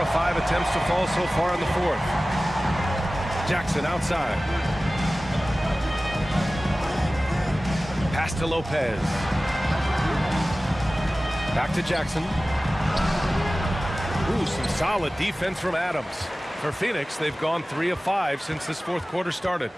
5 attempts to fall so far in the fourth. Jackson outside. Pass to Lopez. Back to Jackson. Ooh, some solid defense from Adams. For Phoenix, they've gone 3 of 5 since this fourth quarter started.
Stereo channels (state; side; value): normal; both; correlation 0.97